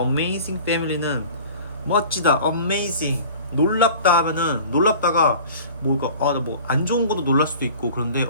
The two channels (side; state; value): both; inverted; correlation -0.43